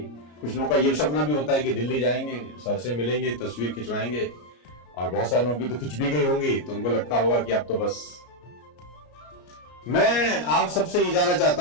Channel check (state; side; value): late; right; 33 ms